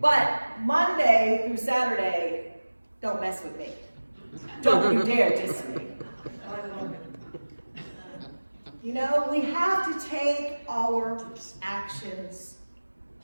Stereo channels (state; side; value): inverted; both; correlation -1.00